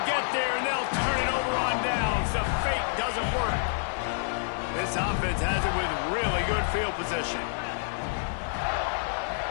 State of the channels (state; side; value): silent; right; digital silence